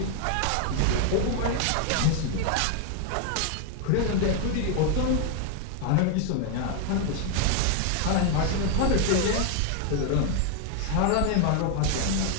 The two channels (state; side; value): different; both; correlation 0.00